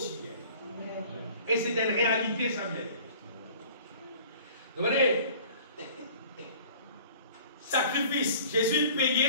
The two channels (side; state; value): both; inverted; correlation -0.48